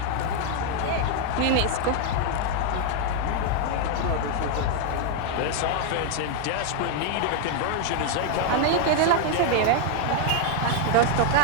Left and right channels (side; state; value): both; different; correlation 0.00